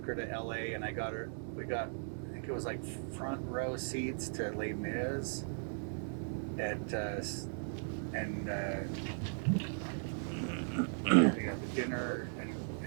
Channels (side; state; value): left; silent; digital silence